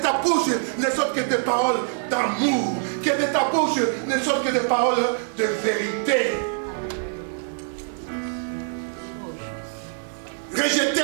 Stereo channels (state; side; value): silent; left; 62 dB below the other